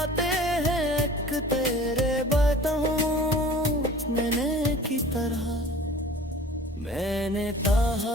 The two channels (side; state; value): both; normal; correlation 0.45